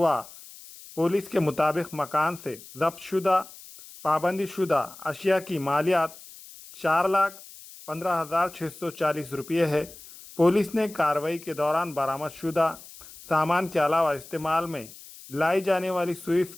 पुलिस के मुताबिक मकान से जब्त शुदा पाबंदी शुदा अशिया की मालियात 4,15,640 रुपये है। पुलिस ने कार्रवाई के दौरान बरामद शुदा सामान के अलावा इस्तेमाल में लाई जाने वाली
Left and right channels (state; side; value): noise; left; hiss, 18 dB below the sound